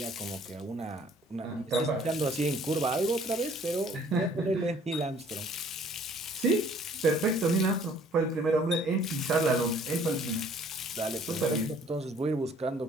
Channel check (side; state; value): both; normal; correlation 0.57